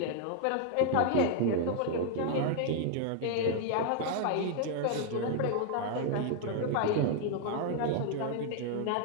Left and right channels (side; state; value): both; different; correlation 0.00